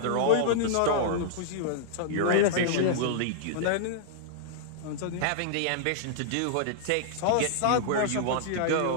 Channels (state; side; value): different; both; correlation -0.01